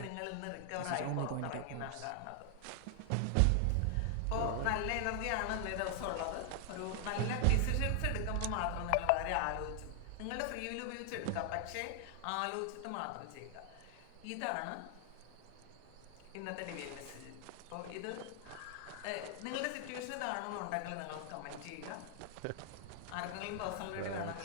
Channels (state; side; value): different; both; correlation 0.00